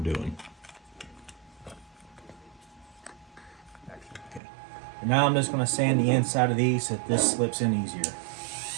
doing. Okay. And now I'm just going to sand the inside of these so that this slips in easier.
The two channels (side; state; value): left; drops out; at 4.4 s